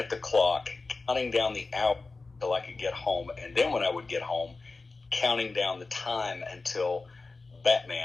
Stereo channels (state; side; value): quieter; right; 3.8 dB